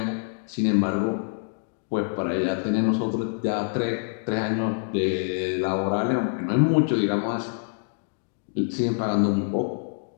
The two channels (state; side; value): silent; right; digital silence